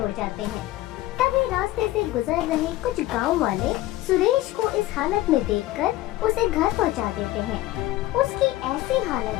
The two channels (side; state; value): right; quieter; 16.5 dB